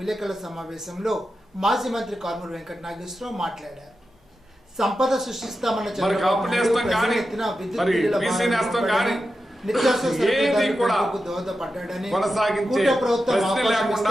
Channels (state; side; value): normal; both; correlation 0.90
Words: సమావేశంలో మాజీ మంత్రి కారుమూరి వెంకట నాగేశ్వరరావు మాట్లాడారు. సంపద సృష్టిస్తామన్న దోహదపడ్డాడని, కూట ప్రభుత్వం